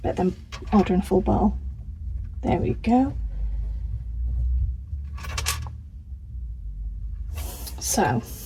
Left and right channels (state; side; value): identical; both; correlation 1.00